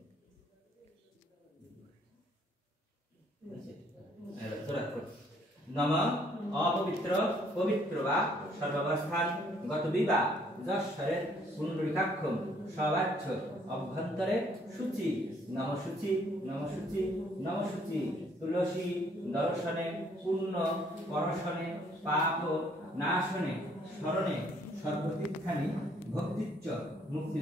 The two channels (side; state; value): both; normal; correlation 0.64